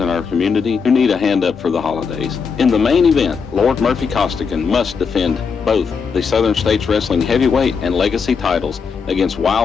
our community who need a hand up for the holidays. In the main event, Lord Murphy Costigan must defend both the Southern States Wrestling Heavyweight and Legacy titles against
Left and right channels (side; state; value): right; quieter; 5.8 dB